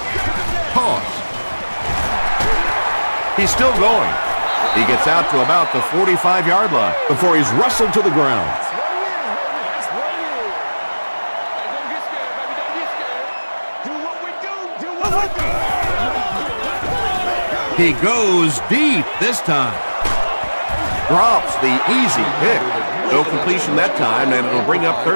Pause. He's still going. He gets out to about the 45-yard line before he's wrestled to the ground. He goes deep this time. Drops the easy pick. No completion that time, and it'll bring up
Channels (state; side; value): inverted; both; correlation -1.00